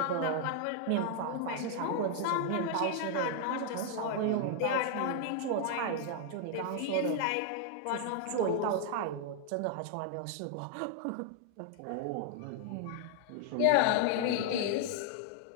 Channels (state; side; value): different; both; correlation 0.00